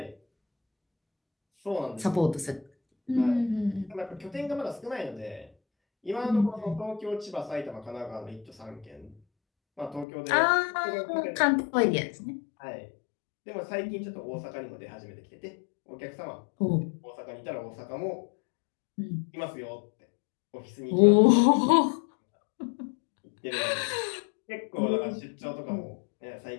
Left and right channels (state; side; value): drops out; right; at 10.1 s